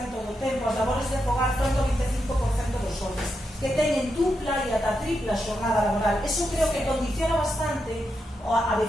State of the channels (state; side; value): normal; both; correlation 0.85